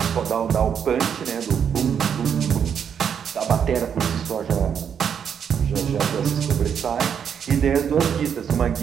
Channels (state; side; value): quieter; left; 7.8 dB